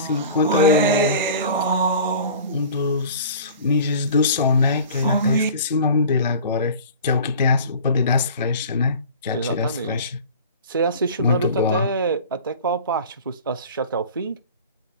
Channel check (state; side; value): inverted; both; correlation -0.40